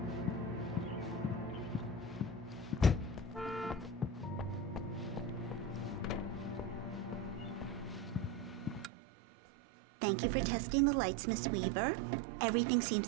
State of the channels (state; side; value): drops out; left; at 8.9 s